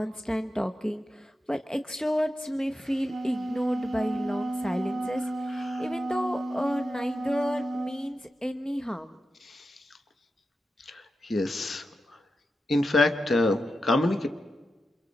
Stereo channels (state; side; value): normal; both; correlation 0.90